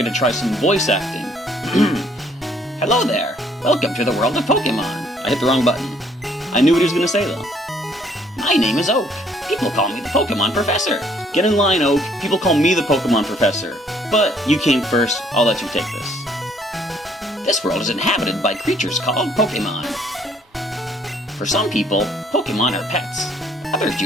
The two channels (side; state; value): both; normal; correlation 0.63